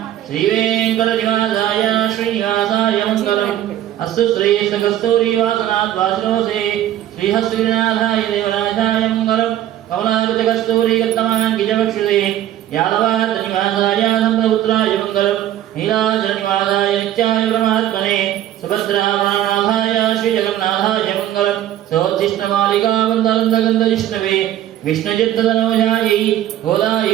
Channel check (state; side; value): quieter; left; 12.4 dB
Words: श्रीवेंकटनिवासाय श्रीनिवासाय मंगलम् अस्तु श्रीकस्तूरीवासनात् वासनोसे श्रीहस्तिनाथाय देवराजाय मंगलम् कमलाकृतकस्तूरीगतमाङ्गिजवक्षुषे यादवात्तनिवासाय सम्प्रपुत्राय मंगलम् नीलाचलनिवासाय नित्याय परमात्मने सुभद्रावणानाथाय श्रीजगन्नाथाय मंगलम् सोत्तिष्ठमालिकावन्दनन्दगन्धजिष्णवे विष्णुचित्ततनोजायै